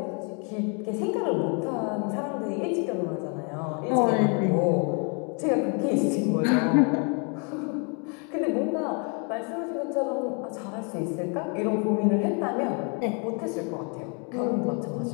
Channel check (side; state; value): right; quieter; 36.9 dB